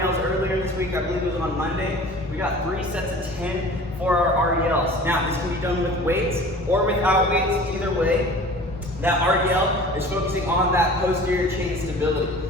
earlier this week, I believe it was on Monday. We got 3 sets of 10 for our RDLs. Now this can be done with weights or without weights, either way. That RDL is focusing on that posterior chain stability.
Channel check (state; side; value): normal; both; correlation 0.43